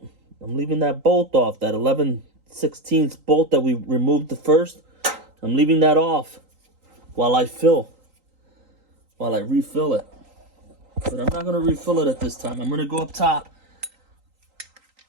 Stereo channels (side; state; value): left; late; 3.9 ms